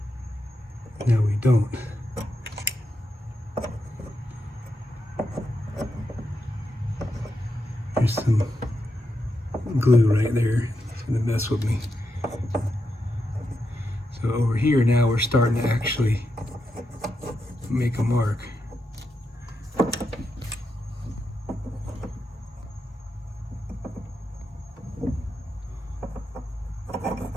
Now we don't. There's some glue right there. It's gonna mess with me. So over here now we're starting to actually make a mark.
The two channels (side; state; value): both; normal; correlation 0.85